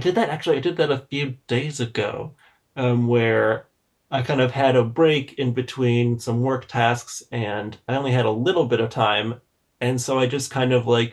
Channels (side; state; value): both; identical; correlation 1.00